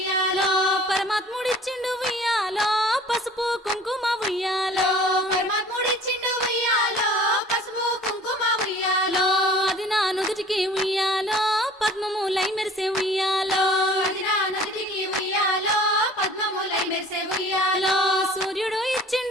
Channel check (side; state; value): both; normal; correlation 0.48